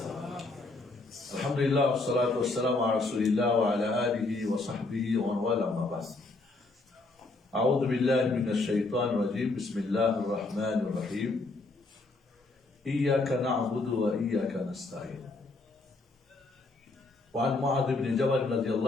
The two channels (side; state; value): right; quieter; 3.3 dB